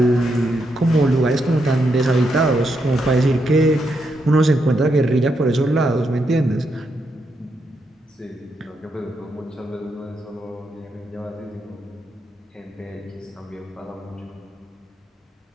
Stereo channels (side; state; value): both; normal; correlation 0.81